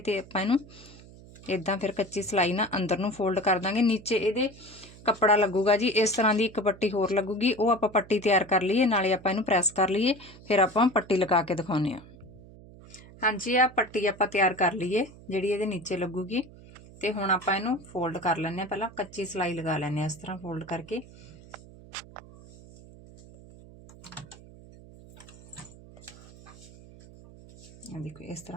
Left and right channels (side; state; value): right; noise; hum, 20 dB below the sound